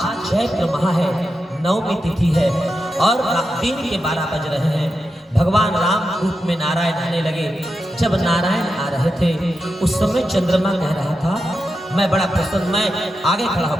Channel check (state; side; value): normal; both; correlation 0.88